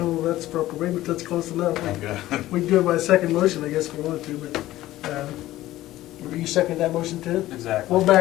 that's proper, maybe that's close enough. Okay. We can do it by second motion, I guess, if we wanted to, but, you second that motion too? Exactly. We'll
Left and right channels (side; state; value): right; quieter; 15.5 dB